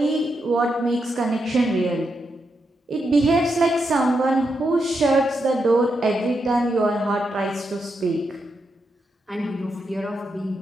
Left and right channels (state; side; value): normal; both; correlation 0.83